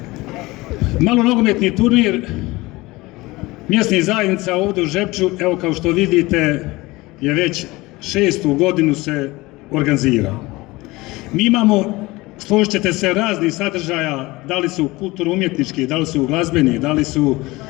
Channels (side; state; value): right; quieter; 21.1 dB